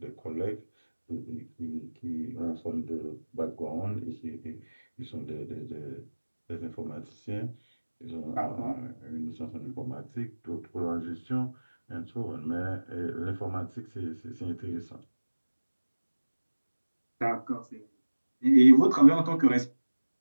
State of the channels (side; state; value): both; inverted; correlation -1.00